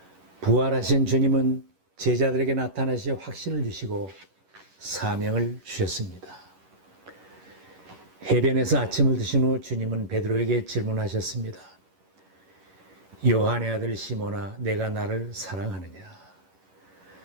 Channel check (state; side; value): late; left; 11 ms